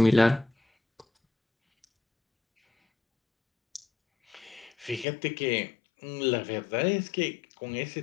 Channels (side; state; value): right; drops out; at 5.1 s